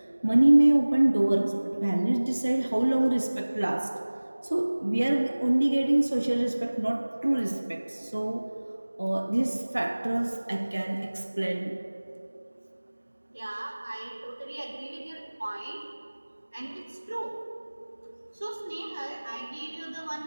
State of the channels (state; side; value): inverted; both; correlation -1.00